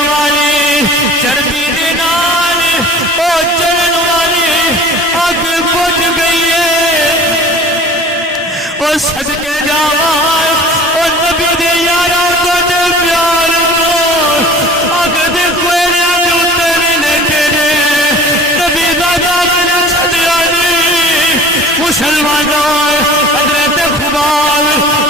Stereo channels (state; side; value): normal; both; correlation 0.43